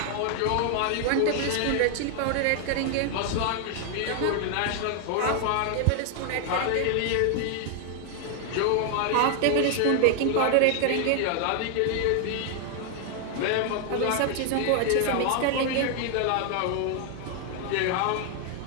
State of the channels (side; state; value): both; different; correlation 0.00